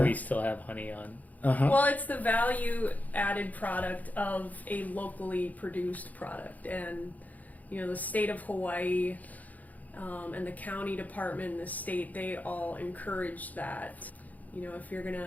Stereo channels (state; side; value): late; right; 0.078 ms